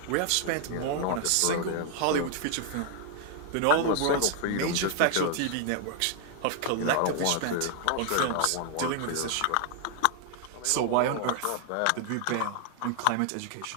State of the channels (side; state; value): both; different; correlation 0.00